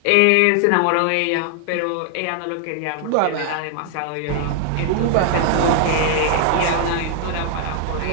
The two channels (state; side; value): different; both; correlation 0.00